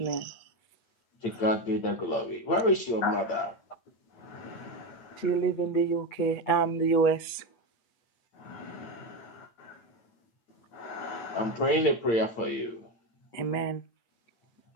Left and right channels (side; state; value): right; late; 8.3 ms